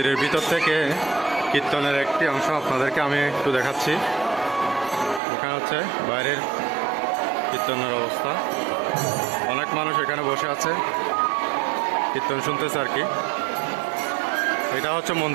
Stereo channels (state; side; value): drops out; left; at 5.2 s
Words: ভিতর থেকে কীর্তনের একটি অংশ আপনাদেরকে আমি একটু দেখাচ্ছি। এখানে হচ্ছে বাইরের কীর্তনের অবস্থা, অনেক মানুষ এখানে বসে আছে কীর্তন শুনতেছে আর কি। এটা হচ্ছে